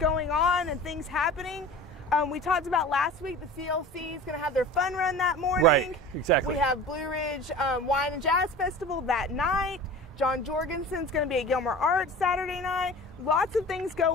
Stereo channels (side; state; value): both; normal; correlation 0.38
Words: on and things happening. We talked about last week, the CLC is going to have their fun run that morning. Right, exactly. We have Blue Ridge Wine and Jazz Festival that night. John Jorgensen's going to be at Gilmer Arts Saturday night. Lots of things